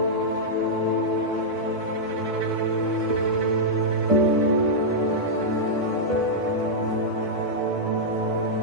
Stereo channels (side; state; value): left; late; 2.2 ms